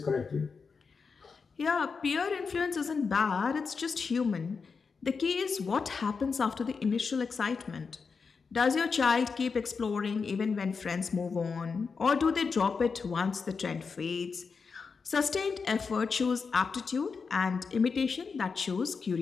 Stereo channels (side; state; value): right; quieter; 5.2 dB